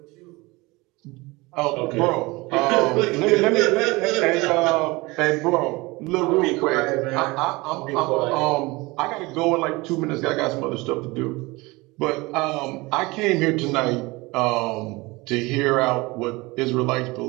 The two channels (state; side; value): quieter; left; 23.0 dB